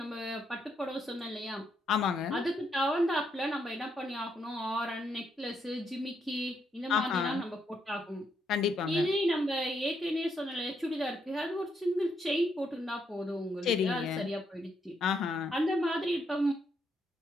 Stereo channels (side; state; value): both; normal; correlation 0.77